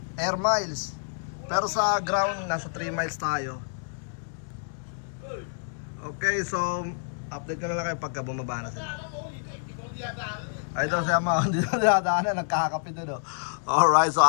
air miles. Pero sa ground nasa 3 miles tayo. Okay, so update ko na lang kayo pagka bumaba na sila. Ay daw siya mga hindi na dinadaanan, nagkakape doon Alright, so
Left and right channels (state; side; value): silent; right; digital silence